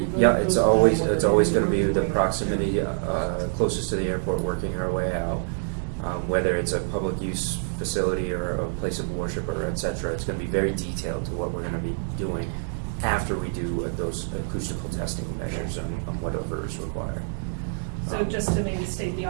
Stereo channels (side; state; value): left; silent; digital silence